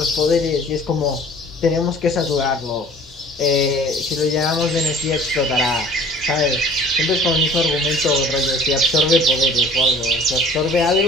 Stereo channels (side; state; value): both; normal; correlation 0.48